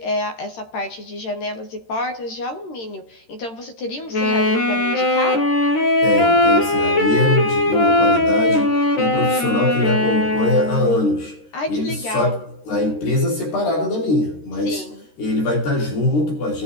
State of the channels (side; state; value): right; late; 13 ms